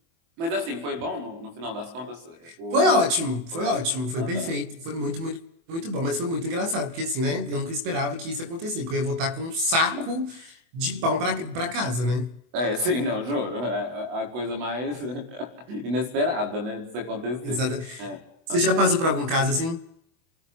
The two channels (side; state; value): left; late; 24 ms